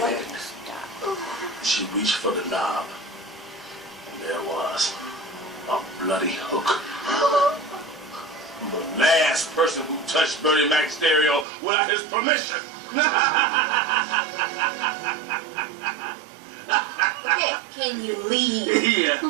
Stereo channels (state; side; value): drops out; left; at 11.5 s